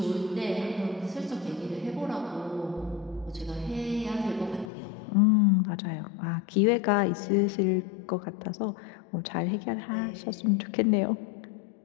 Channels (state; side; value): drops out; right; at 4.7 s